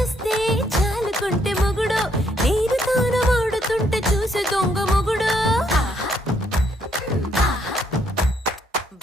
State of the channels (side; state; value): both; normal; correlation 0.71